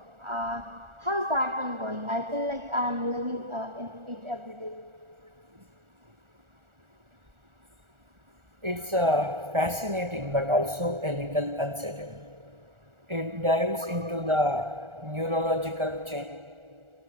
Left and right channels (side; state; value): left; late; 1.4 ms